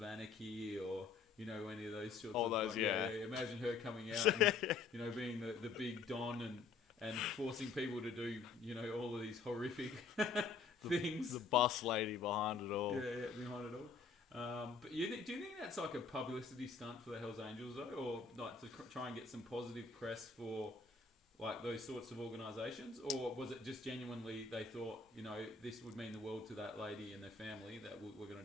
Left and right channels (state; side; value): quieter; right; 4.8 dB